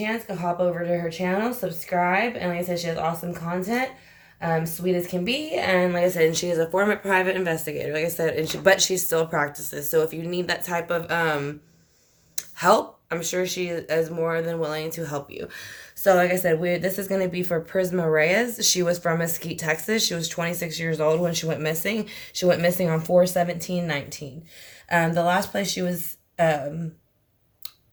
go hop over to her channel, subscribe, and like I said, she has awesome content. Sweet as can be, and like I said, she is a former private investigator, like I said, but she still practices. So if you need that type of help, I'm sure she is more than willing to help you. So like I said, this is going to be for Prisma Reyes. She was from Mesquite, Texas. She was 26 years old when she went missing. She went missing on 4/17/19. The last place she was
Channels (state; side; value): identical; both; correlation 1.00